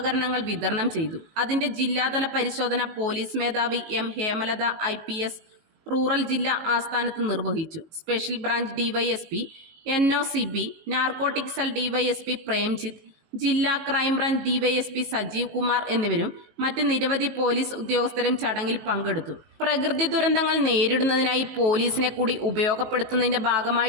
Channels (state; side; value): late; left; 19 ms